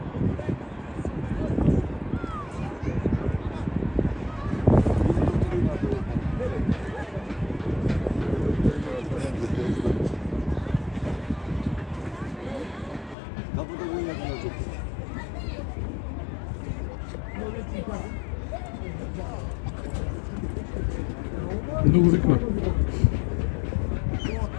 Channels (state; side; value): drops out; right; at 13.2 s